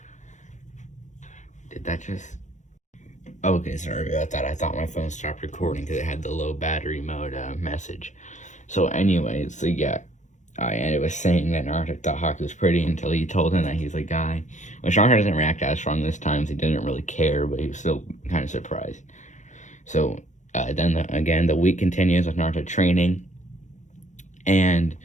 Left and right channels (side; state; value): right; late; 0.35 ms